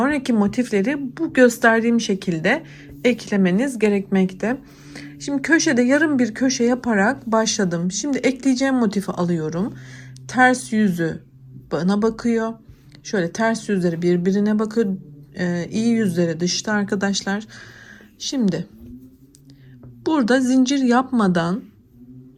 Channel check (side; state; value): both; identical; correlation 1.00